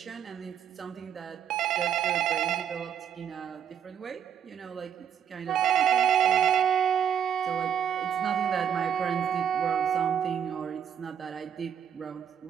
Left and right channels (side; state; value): left; quieter; 8.7 dB